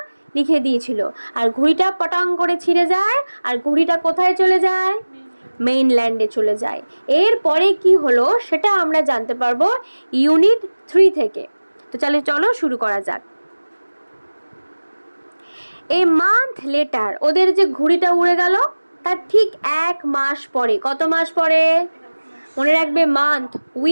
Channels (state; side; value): inverted; both; correlation -1.00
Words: লিখে দিয়েছিল, আর ঘুড়িটা পটাং করে ছিঁড়ে যায়, আর ঘুড়িটা কোথায় চলে যায়? মেইনল্যান্ডে চলে যায়। এরপরে কি হলো সেটা আমরা জানতে পারবো ইউনিট 3 থেকে। তো চলো শুরু করা যাক। এ মান্থ লেটার, ওদের যে ঘুড়িটা উড়ে গেল তার ঠিক 1 মাস পরে, কত মাস পরে? মনে রাখবে, মান্থ,